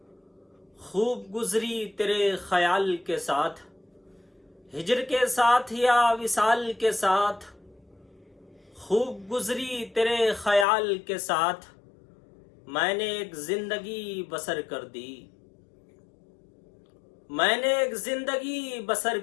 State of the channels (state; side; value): drops out; right; at 10.7 s